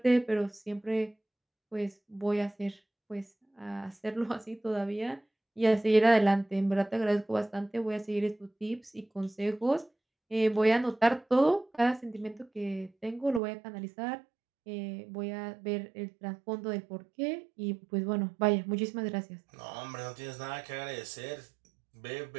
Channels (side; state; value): left; drops out; at 13.4 s